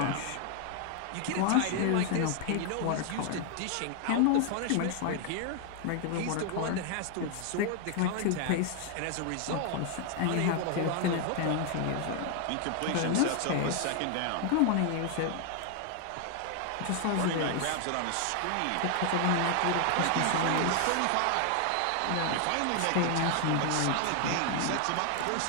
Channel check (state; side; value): different; both; correlation 0.00